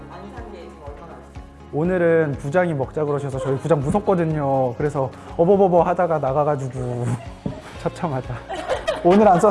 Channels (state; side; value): identical; both; correlation 1.00